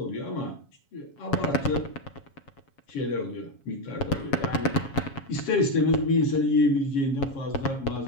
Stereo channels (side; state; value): right; late; 7.3 ms